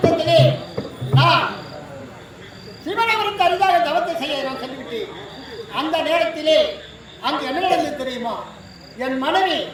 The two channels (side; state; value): both; identical; correlation 1.00